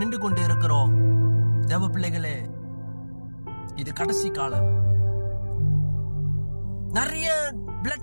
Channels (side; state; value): both; inverted; correlation -1.00